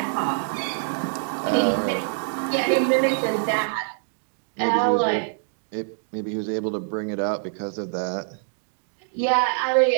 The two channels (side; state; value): left; silent; digital silence